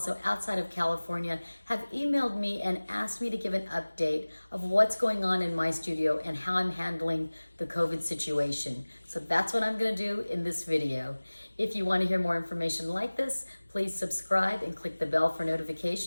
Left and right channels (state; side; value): inverted; both; correlation -1.00